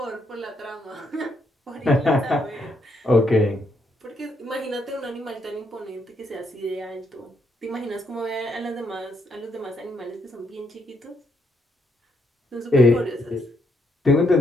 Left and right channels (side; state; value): both; normal; correlation 0.75